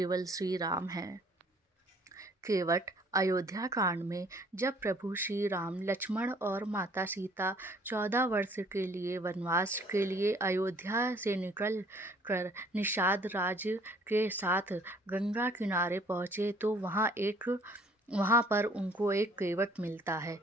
श्री राम हैं। केवट अयोध्या कांड में जब प्रभु श्री राम, लक्ष्मण और माता सीता 14 वर्ष के लिए वनवास के लिए अयोध्या से निकल कर निषाद राज्य के साथ गंगा किनारे पहुँचे तो वहाँ पर उनको एक केवट मिलता है।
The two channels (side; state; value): both; normal; correlation 0.58